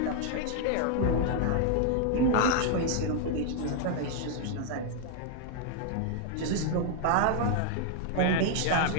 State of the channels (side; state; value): both; different; correlation 0.00